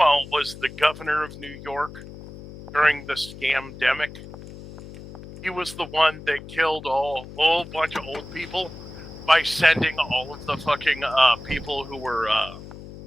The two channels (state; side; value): noise; left; hum, 15 dB below the sound